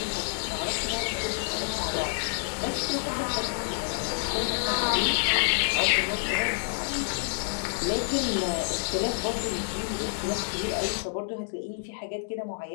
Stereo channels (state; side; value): silent; right; digital silence